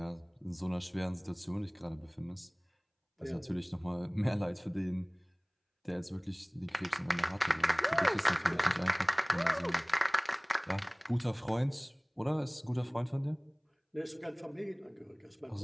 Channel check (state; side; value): identical; both; correlation 1.00